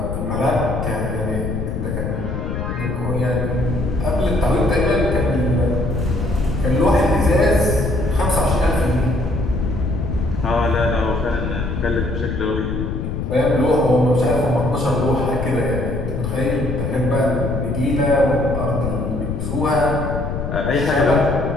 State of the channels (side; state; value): left; noise; rumble, 3 dB below the sound